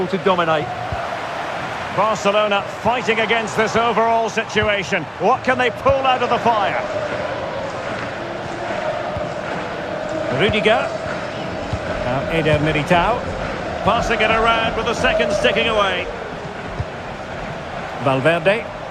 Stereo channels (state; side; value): identical; both; correlation 1.00